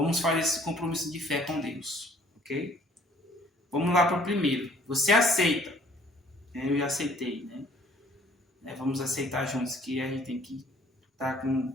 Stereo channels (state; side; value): normal; both; correlation 0.58